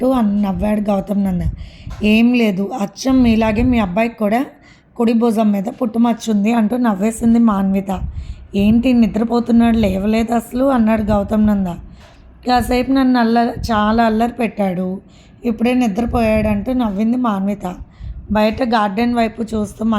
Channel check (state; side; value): identical; both; correlation 1.00